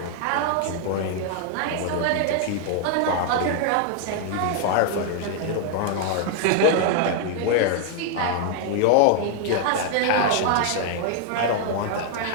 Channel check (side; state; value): both; different; correlation 0.00